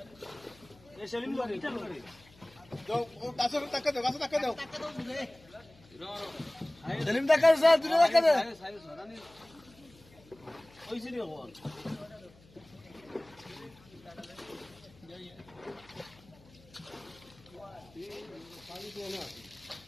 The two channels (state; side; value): noise; left; hum, 25 dB below the sound